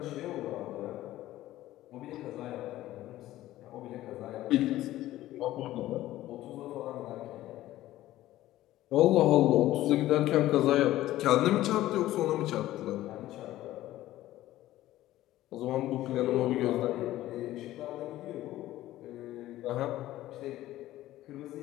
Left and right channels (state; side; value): quieter; right; 15.0 dB